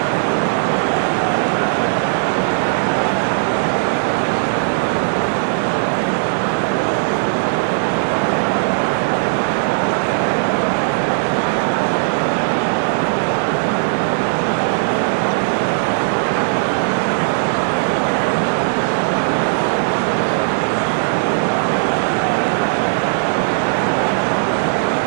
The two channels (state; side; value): silent; left; 62 dB below the other